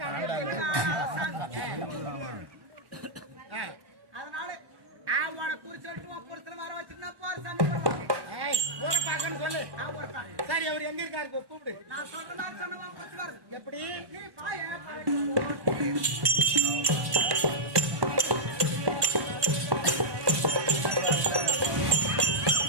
அதனால அவனை குறி சொல்லிட்டு புருஷனை வர வச்சுட்டு போற சாமி ஊரை பார்க்கன்னு சொல்லு. சரி அவர் எங்க இருக்காரு கூப்பிடு. நான் சொல்ற மாதிரி சொன்ன எப்படி நீ பாய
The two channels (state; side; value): late; left; 1.1 ms